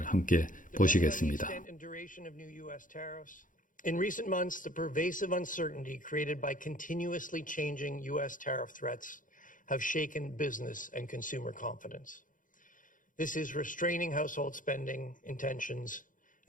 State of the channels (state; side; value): late; right; 0.38 ms